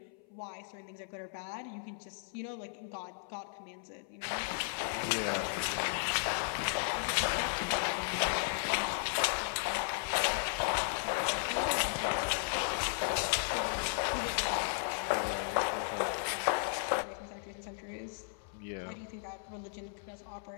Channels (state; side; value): silent; right; 54 dB below the other